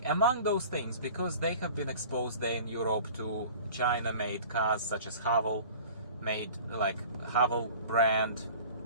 Among those things, because they have been exposed there in Europe to China-made cars such as Haval, made like Haval brand,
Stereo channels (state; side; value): inverted; both; correlation -0.43